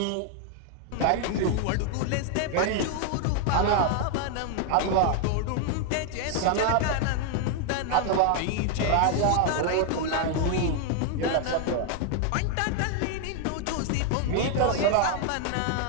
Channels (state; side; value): different; both; correlation 0.00